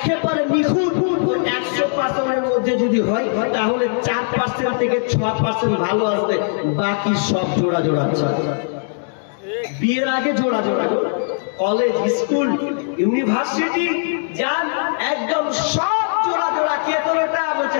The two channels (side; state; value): right; silent; 66 dB below the other